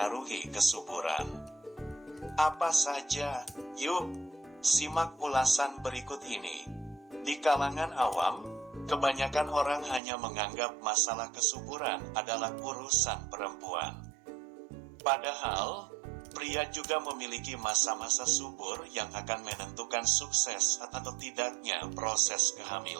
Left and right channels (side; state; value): left; drops out; at 10.0 s